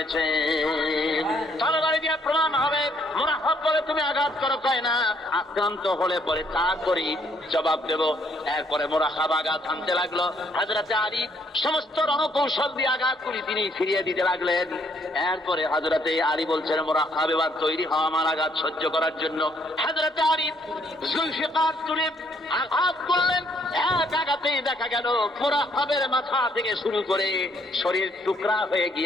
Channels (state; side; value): normal; both; correlation 0.67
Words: তরবারি দিয়ে প্রমাণ হবে, মুনাফিক বলে তুমি আঘাত করো, কয় না আক্রান্ত হলে পরে তা করি জবাব দেব। এরপরে মুনাফিক আঘাত আনতে লাগলো। হযরতে আলী সমস্ত রণকৌশল দিয়ে আঘাতগুলি তিনি ফিরিয়ে দিতে লাগলেন। এরপরে হযরতে আলী বলছেন, মুনাফিক এবার তৈরি হও আমার আঘাত সহ্য করার জন্য। হযরতে আলী জুলফিকার তুলে আঘাত করলেন। এক আঘাতেই দেখা গেল মুনাফিকের মাথা থেকে শুরু করে শরীর টুকরা হয়ে